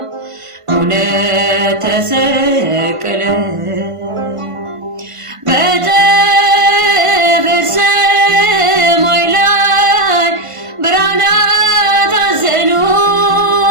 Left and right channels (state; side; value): late; left; 1.5 ms